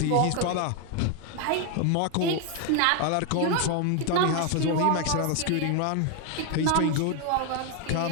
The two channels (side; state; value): both; different; correlation 0.01